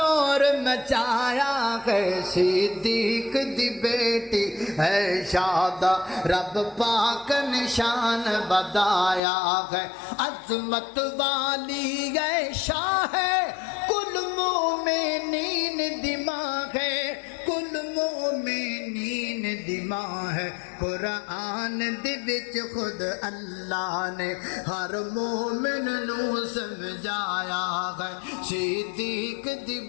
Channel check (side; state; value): right; drops out; at 9.2 s